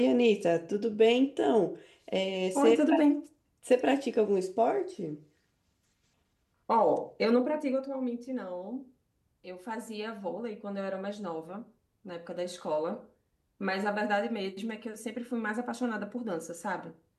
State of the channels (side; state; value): both; identical; correlation 1.00